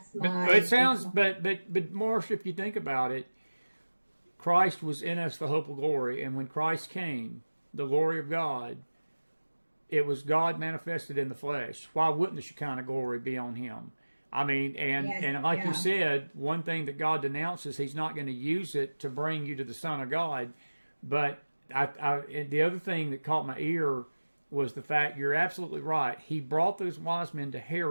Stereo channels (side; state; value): both; inverted; correlation -1.00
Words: my... But it sounds... But Marsha, if you think about it, Christ was in us the hope of glory. And when Christ came, the glory of God, it was God manifested in the flesh. Why wouldn't the Shekinah glory be on him? I mean, and like you said, one thing that God denounces, he's not going to use it to bring you to the Son of God. But the other thing that caught my ear was the fact, you're absolutely right, he brought those wise men to